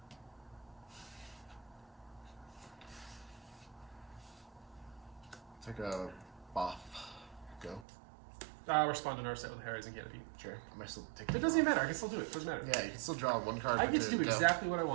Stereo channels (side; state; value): left; drops out; at 7.9 s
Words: take a buff. Go. I'll respond to Narset with Horizon Canopy. Sure. I might still take. It doesn't even matter. I can still do it. It doesn't matter. Yeah, you can still draw one card. I get to do go. exactly what I